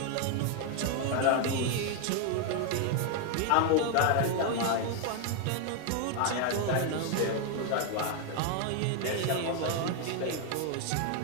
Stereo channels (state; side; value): different; both; correlation 0.01